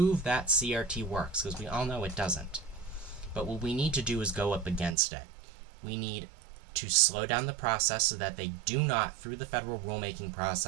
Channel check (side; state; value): left; drops out; at 5.0 s